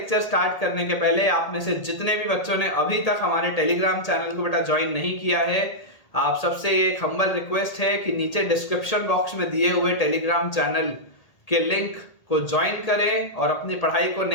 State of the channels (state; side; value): late; right; 1.8 ms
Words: स्टार्ट करने के पहले आप में से जितने भी बच्चों ने अभी तक हमारे टेलीग्राम चैनल को बेटा ज्वाइन नहीं किया है, आप सबसे एक हम्बल रिक्वेस्ट है कि नीचे डिस्क्रिप्शन बॉक्स में दिए हुए टेलीग्राम चैनल के लिंक को ज्वाइन करें और अपनी पढ़ाई को